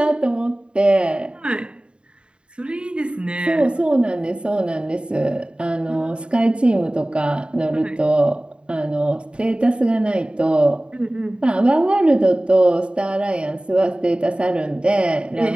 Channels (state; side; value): late; left; 0.053 ms